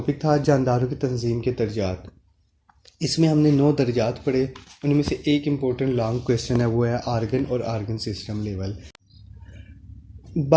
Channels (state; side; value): identical; both; correlation 1.00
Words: था जानदारों की तंजीम के दर्जात। इसमें हमने 9 दर्जात पढ़े, उनमें से एक इम्पोर्टेंट लॉन्ग क्वेश्चन है वो है आर्गन और आर्गन सिस्टम लेवल।